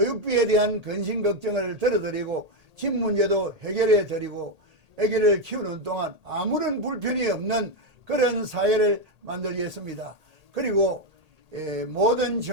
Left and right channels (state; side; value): late; left; 1.8 ms